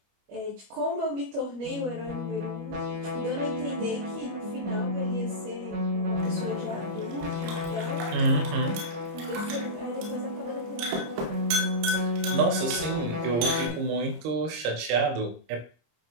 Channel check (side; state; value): left; late; 26 ms